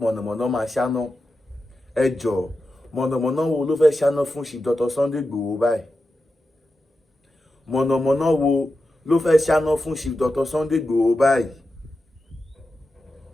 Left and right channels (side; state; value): both; normal; correlation 0.90